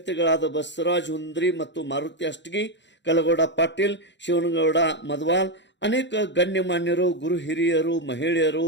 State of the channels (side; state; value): right; late; 0.52 ms